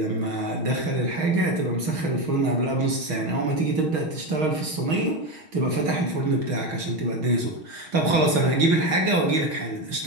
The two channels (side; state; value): left; late; 6.3 ms